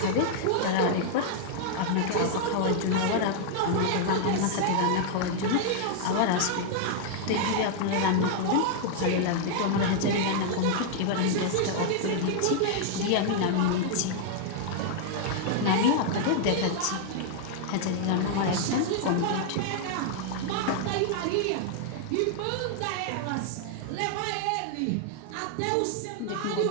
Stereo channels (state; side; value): different; both; correlation 0.00